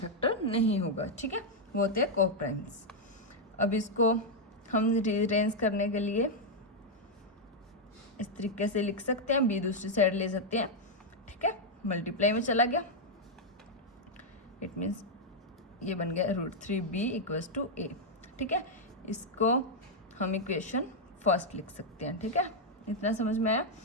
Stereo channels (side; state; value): both; normal; correlation -0.01